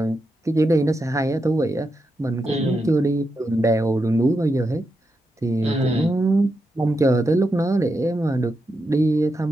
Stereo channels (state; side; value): normal; both; correlation 0.86